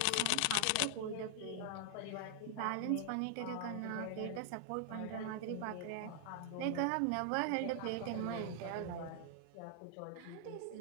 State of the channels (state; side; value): different; both; correlation 0.00